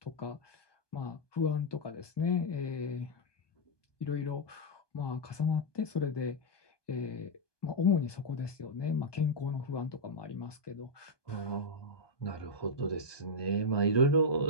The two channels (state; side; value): late; right; 1.2 ms